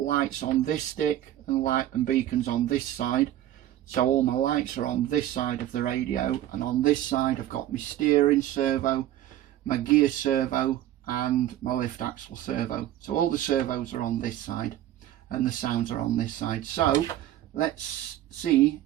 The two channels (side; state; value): left; quieter; 13.0 dB